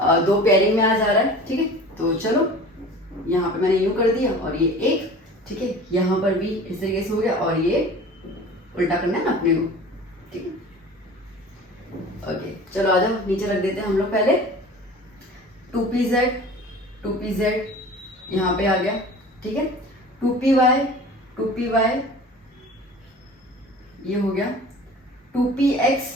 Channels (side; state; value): both; normal; correlation 0.41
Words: 2 पेयरिंग में आ जा रहा है। ठीक है, तो चलो यहाँ पे मैंने यूं कर दिया और ये एक, ठीक है, यहाँ पर भी इस तरीके से हो गया और ये उल्टा करना है ना अपने को। ठीक है, ओके, चलो आ जाओ, नीचे रख देते हैं हम लोग पहले। 2pz यहाँ पे आ गया। ठीक है, 2py ये हो गया,